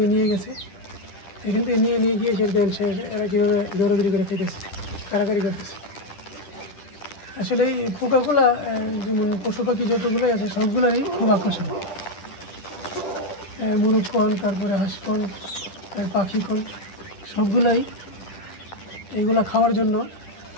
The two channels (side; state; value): right; late; 10 ms